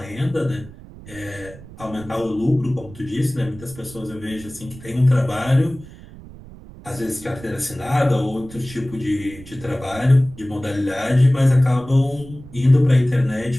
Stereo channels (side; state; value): right; noise; rumble, 18 dB below the sound